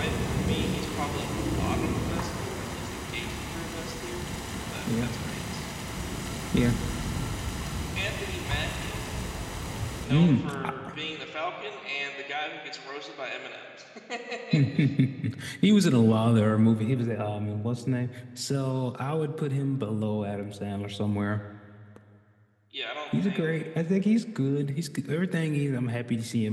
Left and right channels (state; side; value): identical; both; correlation 1.00